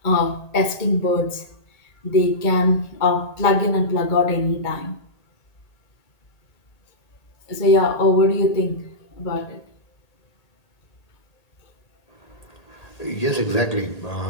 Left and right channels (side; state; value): right; late; 1.8 ms